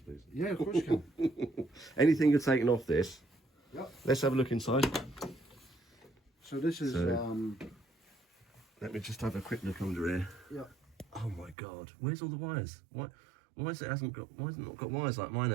Yeah, of course you can. Anything you're taking off this? Yep. Let's have a look inside. So this is. Let me just have a quick look under here. Yep. Oh my God! Where's all the wires? Why has it not got wires like mine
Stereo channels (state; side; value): drops out; left; at 11.6 s